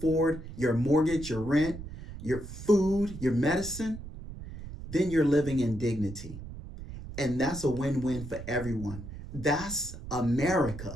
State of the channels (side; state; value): right; noise; rumble, 11 dB below the sound